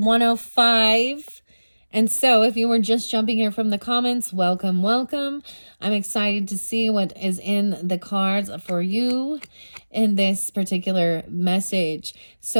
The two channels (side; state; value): both; inverted; correlation -1.00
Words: And so if you were just jumping here from the comments, welcome, welcome. I'm excited to see what is in the cards for you in this particular message.